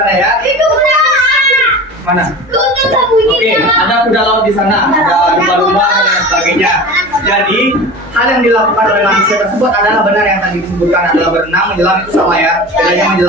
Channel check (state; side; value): normal; both; correlation 0.34